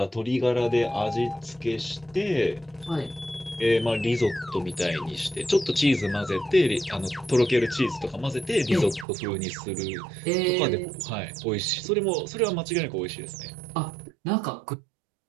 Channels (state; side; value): drops out; left; at 9.1 s